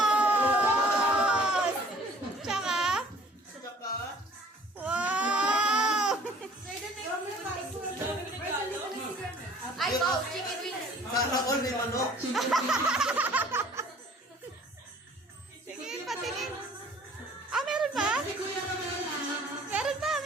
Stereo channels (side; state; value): both; normal; correlation 0.53